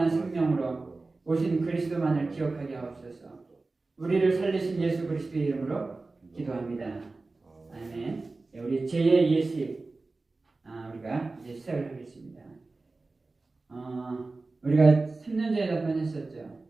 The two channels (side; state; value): left; quieter; 3.5 dB